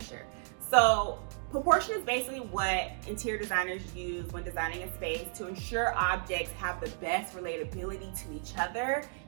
So proportion is basically what interior designers use when designing a space to ensure objects have the best relatability to each other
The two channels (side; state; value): left; silent; 56 dB below the other